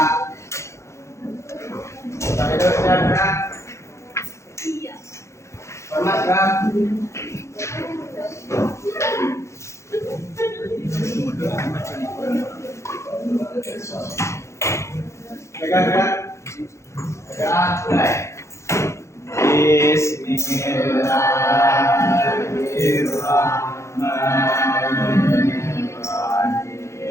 Pak Edo sudah Kak. Iya. Hormat Kak. Pegang Kak. Pegang mulai.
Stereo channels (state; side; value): late; right; 0.14 ms